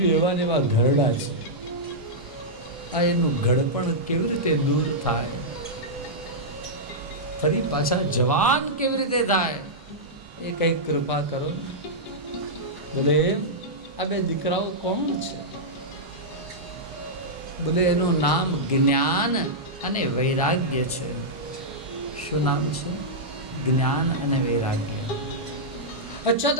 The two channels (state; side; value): normal; both; correlation -0.10